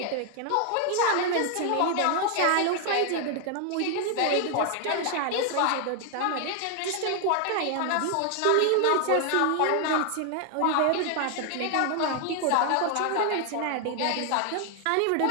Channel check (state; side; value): different; both; correlation 0.00